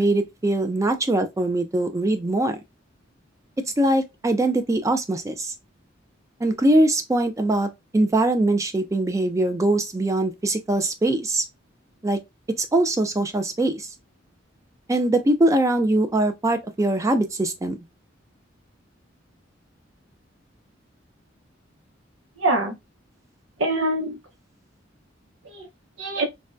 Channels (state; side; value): normal; both; correlation 0.67